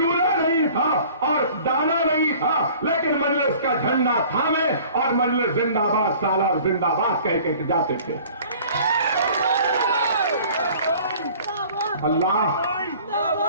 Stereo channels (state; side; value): inverted; both; correlation -0.49